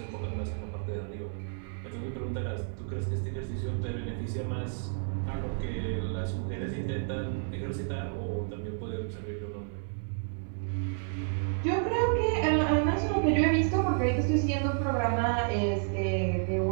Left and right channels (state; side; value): silent; left; 57 dB below the other